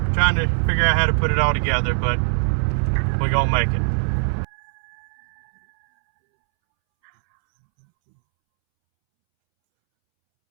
Trying to figure out how to put it all together, but we're gonna make it.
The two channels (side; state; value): left; silent; 65 dB below the other